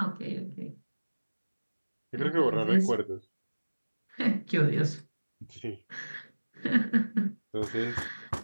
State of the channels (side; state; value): both; inverted; correlation -1.00